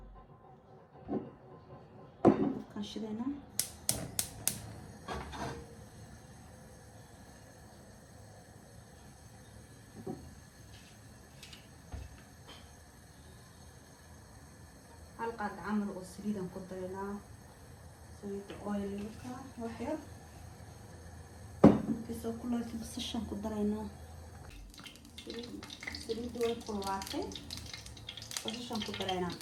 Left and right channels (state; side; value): identical; both; correlation 1.00